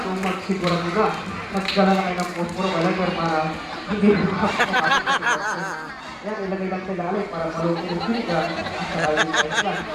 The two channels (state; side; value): identical; both; correlation 1.00